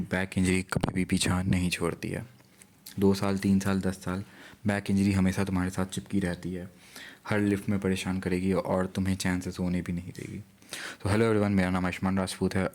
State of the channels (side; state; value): both; identical; correlation 1.00